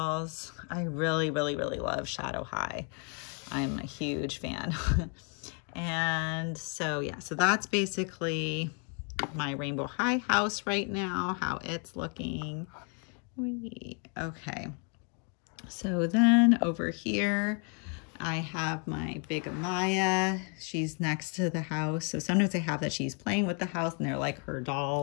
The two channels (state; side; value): quieter; right; 38.4 dB